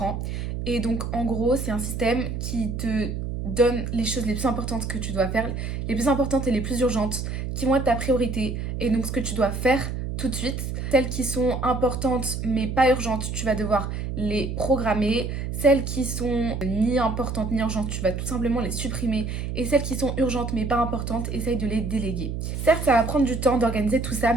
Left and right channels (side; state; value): right; noise; hum, 4 dB below the sound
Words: Et donc en gros, c'est un système qui te donne les choses les plus importantes que tu dois faire, les plus importantes et les plus urgentes, qui vont être ta priorité. Et donc ce que tu dois faire tout de suite. Celles qui sont importantes mais pas urgentes, tu vas devoir les programmer. Celles qui sont ni importantes ni urgentes, tu vas tout simplement les supprimer. Et celles qui sont urgentes mais pas importantes, essaye de les déléguer. Certes, ça va prendre du temps d'organiser tout ça,